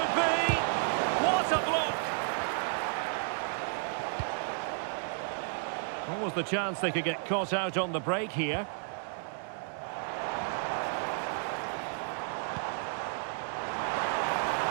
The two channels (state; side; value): silent; left; digital silence